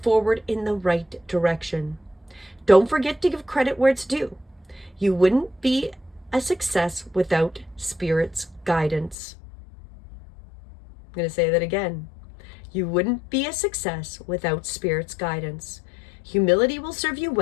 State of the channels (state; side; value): drops out; right; at 9.2 s